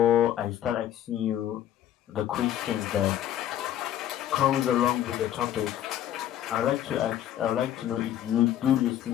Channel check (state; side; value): quieter; right; 11.6 dB